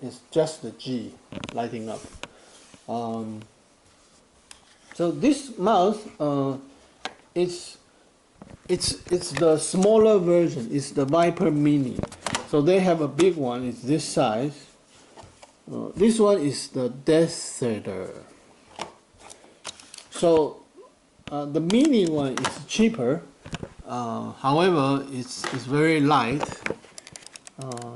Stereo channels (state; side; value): identical; both; correlation 1.00